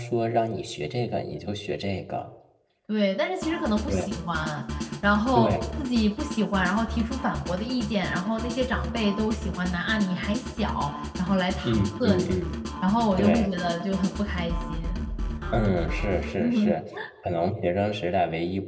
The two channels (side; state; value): both; identical; correlation 1.00